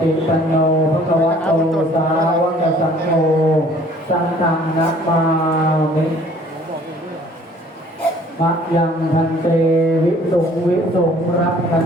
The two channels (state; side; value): normal; both; correlation 0.55